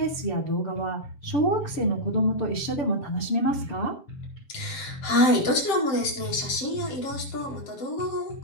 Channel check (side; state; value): right; late; 7.5 ms